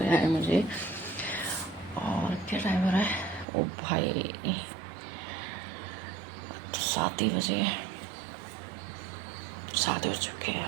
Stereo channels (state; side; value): drops out; left; at 3.5 s